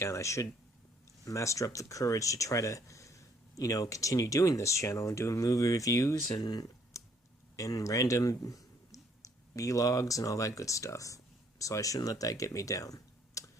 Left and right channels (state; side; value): normal; both; correlation 0.65